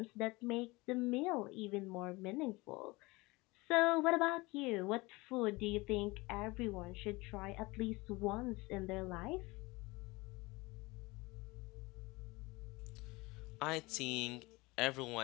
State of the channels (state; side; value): quieter; right; 23.2 dB